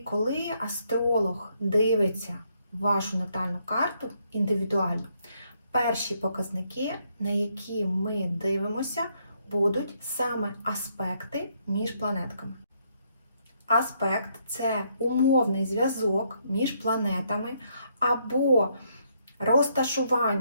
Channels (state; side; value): inverted; both; correlation -0.73